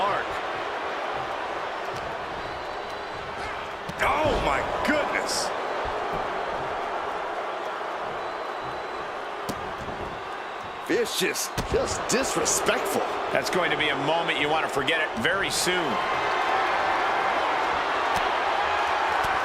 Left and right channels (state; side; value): identical; both; correlation 1.00